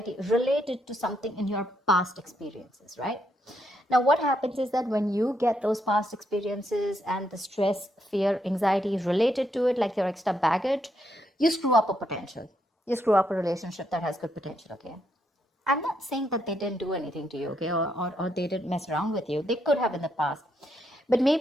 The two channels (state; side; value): normal; both; correlation 0.77